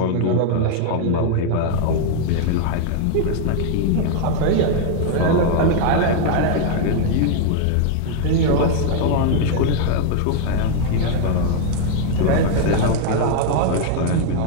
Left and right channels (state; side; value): different; both; correlation 0.00